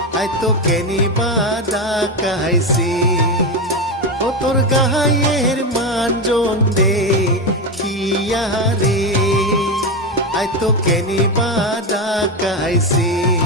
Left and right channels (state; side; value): normal; both; correlation 0.13